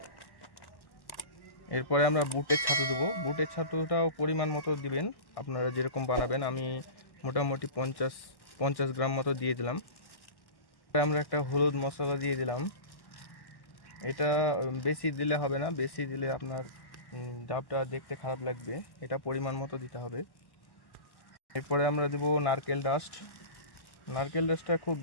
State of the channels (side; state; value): right; late; 1.1 ms